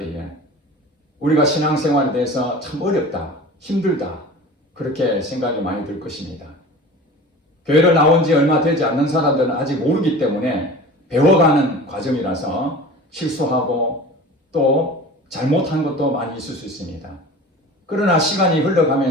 우리가 신앙생활에 대해서 참 어렵다, 힘들다 그렇게 생각이 많이 들 것입니다. 교회를 나온 지 얼마 되지 않는 사람들은 아직 모르기 때문에 배워가는 과정이라서 실수하고 또 잘못한 것도 많이 있을 수 있습니다. 그러나 시간이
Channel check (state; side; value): normal; both; correlation 0.38